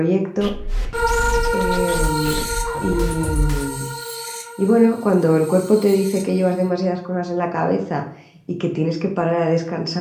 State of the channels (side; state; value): both; identical; correlation 1.00